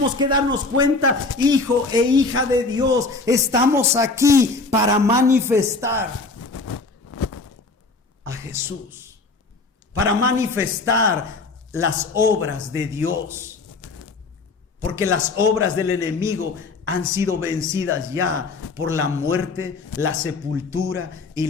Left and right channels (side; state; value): right; quieter; 3.7 dB